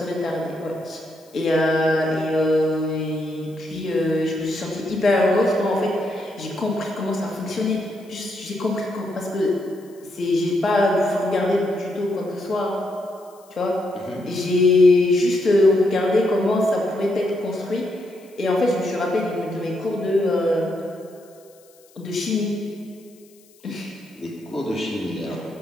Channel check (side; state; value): left; noise; hiss, 29 dB below the sound